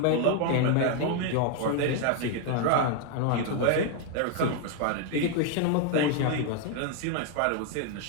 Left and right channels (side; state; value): both; different; correlation 0.01